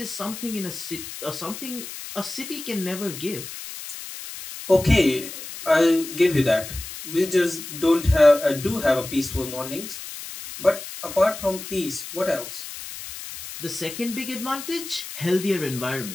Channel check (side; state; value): left; noise; hiss, 11 dB below the sound